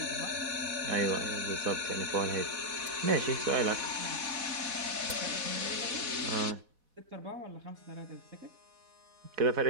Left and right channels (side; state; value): left; late; 4.1 ms